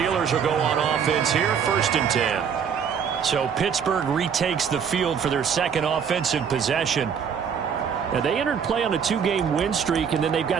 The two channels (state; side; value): quieter; left; 7.2 dB